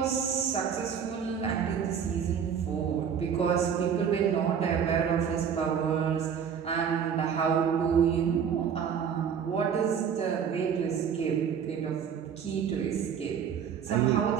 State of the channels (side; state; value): left; quieter; 7.6 dB